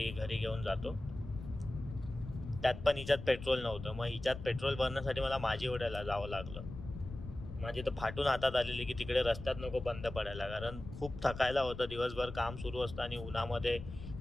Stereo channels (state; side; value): noise; left; rumble, 11 dB below the sound